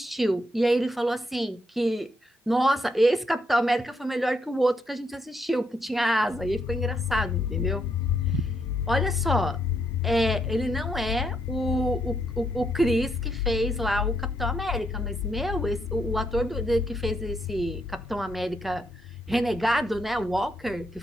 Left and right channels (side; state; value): both; normal; correlation 0.76